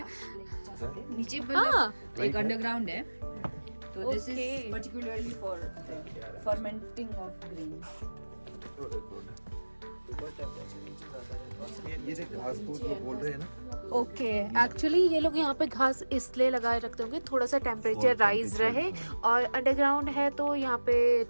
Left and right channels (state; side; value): inverted; both; correlation -1.00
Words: नीचे हाँ. एक अंडरग्राउंड है. तो this Okay. Is particularly for fermenting of grains. ये देख घास फूस वो बोल रहे हैं ना. ओके. एक्चुअली ये लोग यहाँ पे घास इसलिए लगाए रखते होंगे थोड़ा सा टेम्परेचर और राइज temperature, रहे, हाँ. और अंडरग्राउंड है तो यहाँ पे